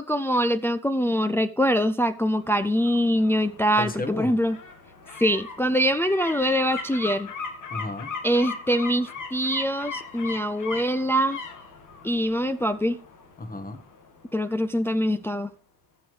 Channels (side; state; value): both; normal; correlation 0.71